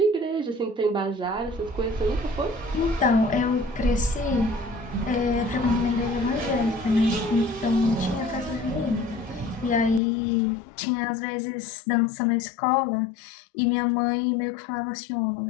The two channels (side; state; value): right; drops out; at 10.0 s